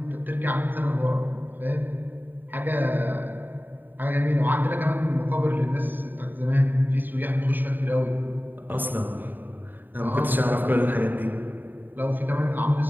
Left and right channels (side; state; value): left; late; 0.091 ms